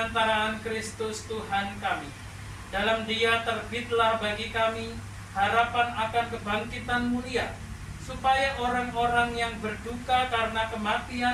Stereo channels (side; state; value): both; identical; correlation 1.00